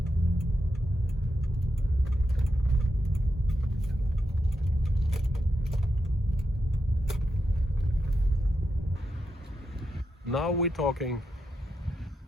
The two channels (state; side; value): normal; both; correlation 0.86